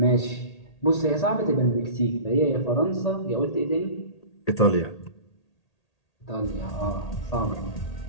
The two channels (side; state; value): right; late; 1.8 ms